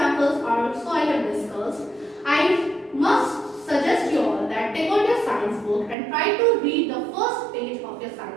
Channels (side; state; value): left; drops out; at 6.0 s